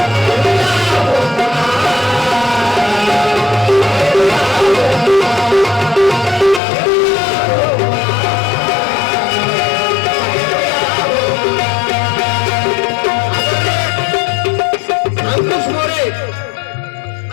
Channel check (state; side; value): drops out; right; at 6.6 s